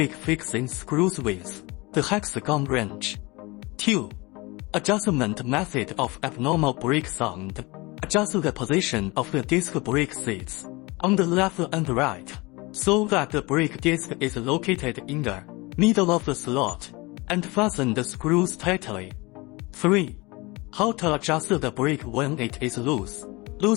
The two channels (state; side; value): quieter; right; 24.3 dB